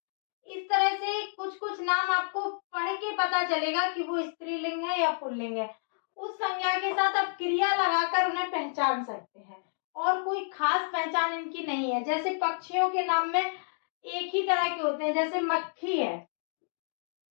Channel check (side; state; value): right; silent; digital silence